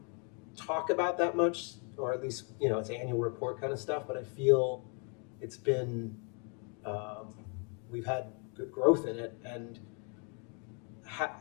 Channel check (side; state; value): right; quieter; 37.7 dB